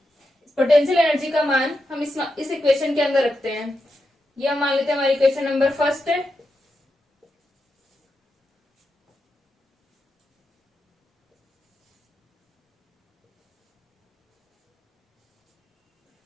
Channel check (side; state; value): both; normal; correlation 0.87